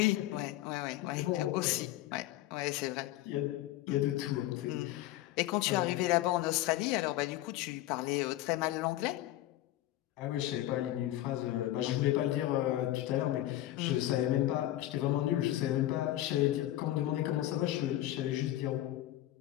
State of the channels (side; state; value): right; quieter; 14.8 dB